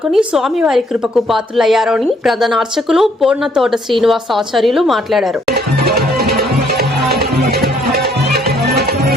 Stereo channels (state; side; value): normal; both; correlation 0.66